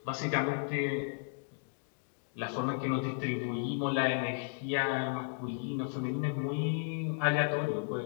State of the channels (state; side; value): silent; right; 55 dB below the other